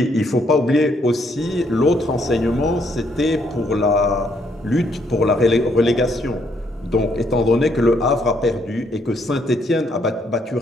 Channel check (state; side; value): normal; both; correlation 0.71